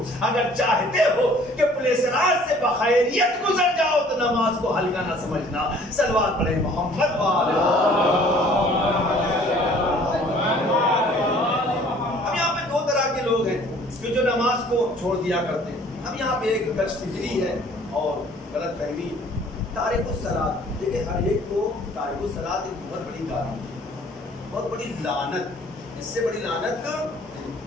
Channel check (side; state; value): both; normal; correlation 0.54